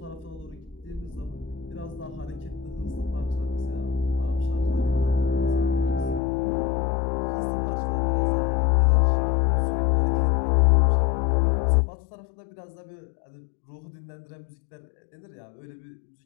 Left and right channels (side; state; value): right; drops out; at 6.2 s